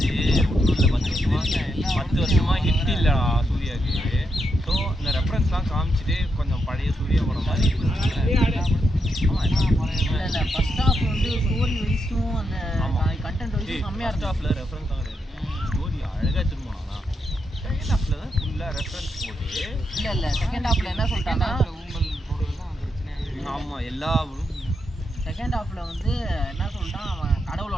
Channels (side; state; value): both; normal; correlation 0.82